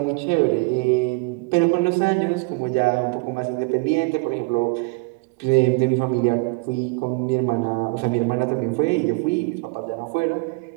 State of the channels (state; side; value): quieter; left; 28.6 dB